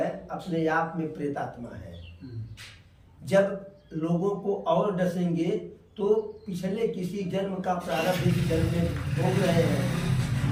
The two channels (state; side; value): identical; both; correlation 1.00